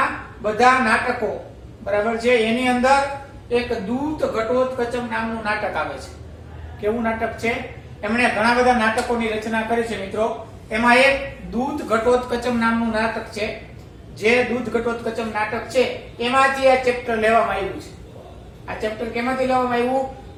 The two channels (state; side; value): identical; both; correlation 1.00